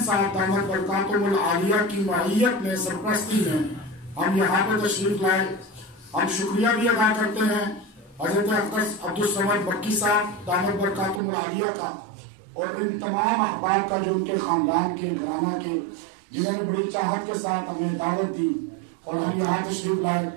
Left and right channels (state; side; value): drops out; left; at 11.2 s